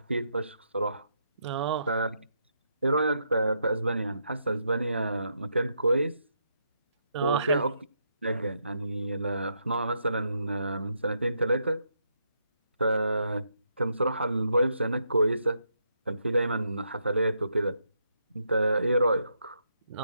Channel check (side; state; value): both; inverted; correlation -0.78